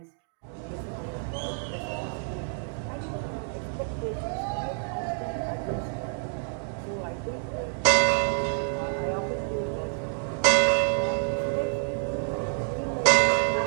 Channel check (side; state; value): left; silent; 59 dB below the other